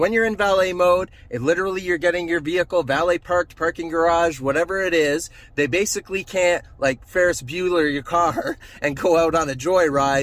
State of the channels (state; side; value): identical; both; correlation 1.00